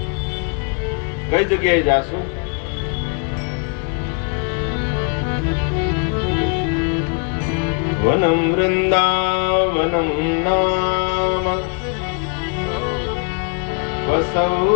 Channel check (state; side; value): quieter; right; 38.5 dB